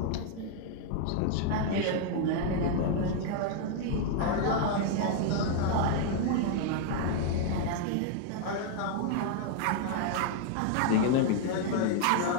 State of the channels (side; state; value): both; different; correlation 0.00